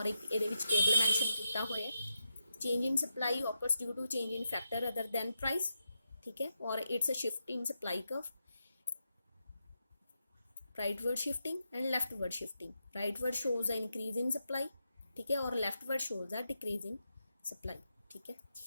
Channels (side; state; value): both; inverted; correlation -0.85